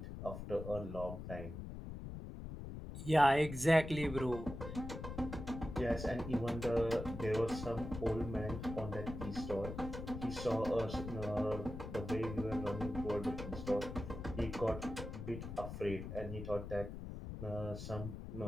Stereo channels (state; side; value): noise; left; rumble, 8 dB below the sound